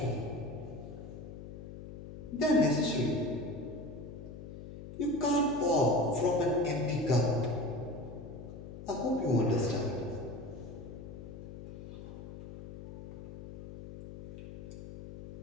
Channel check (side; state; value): left; noise; hum, 12 dB below the sound